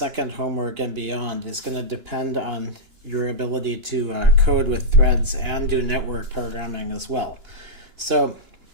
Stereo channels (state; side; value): late; left; 2.9 ms